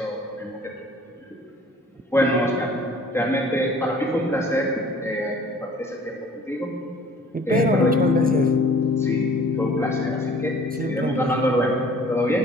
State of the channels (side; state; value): both; normal; correlation 0.51